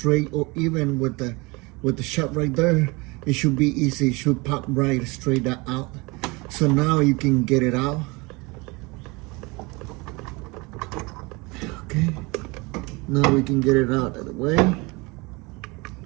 or even with the shot right there, it should be easy. It should pop right straight out. So now you can get it out. Okay, now we can get it out of the way.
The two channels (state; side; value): quieter; left; 25.9 dB